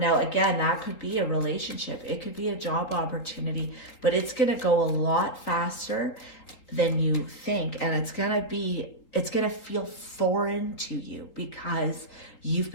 again, that could be a relationship. It could be a job opportunity, but it's going to go a lot faster than you think. And it's going to feel foreign to you because you've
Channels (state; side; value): late; right; 3.8 ms